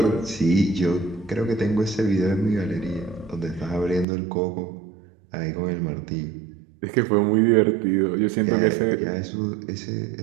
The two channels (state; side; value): drops out; left; at 4.0 s